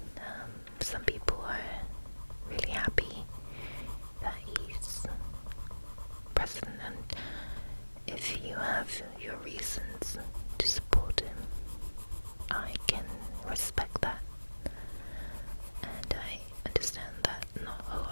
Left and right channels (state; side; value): inverted; both; correlation -1.00